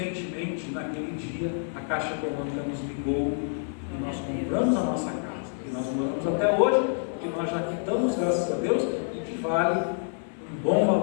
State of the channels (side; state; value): right; silent; 60 dB below the other